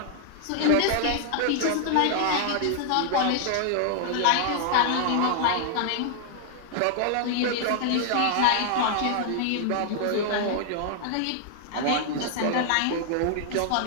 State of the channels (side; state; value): both; different; correlation 0.00